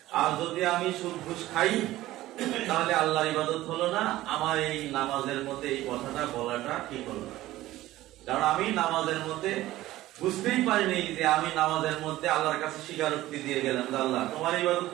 আর যদি আমি সুদ ঘুষ খাই, তাহলে আল্লাহর ইবাদত হলো না। আমার এই নামাজের মধ্যে এই কথাটা বলাটা ঠিক হলো না, কারণ আমি নামাজের মধ্যে বুঝতেই পারিনি যে আমি নামাজের মধ্যে আল্লাহর কাছে স্বীকারোক্তি দিয়ে গেলাম যে আল্লাহ তোমার ইবাদত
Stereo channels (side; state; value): left; quieter; 16.0 dB